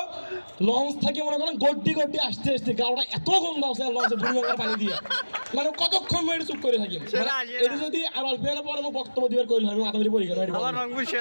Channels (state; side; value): inverted; both; correlation -1.00